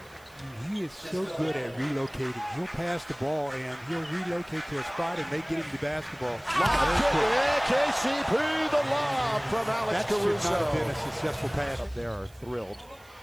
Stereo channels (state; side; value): noise; right; hiss, 27 dB below the sound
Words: He is so good at relocating. He'll pass the ball and he'll relocate to a spot and they get him the basketball. KCP, the lob from Alex Caruso. That should not have been a successful pass. Up there are thrilled.